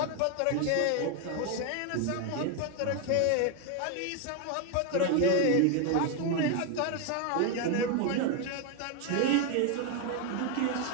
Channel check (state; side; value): different; both; correlation 0.01